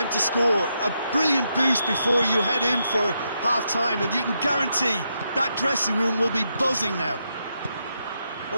to score. A brilliant boost before you head in for half-time, and you can guarantee that dressing room will be buzzing now.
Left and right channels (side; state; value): both; inverted; correlation -0.81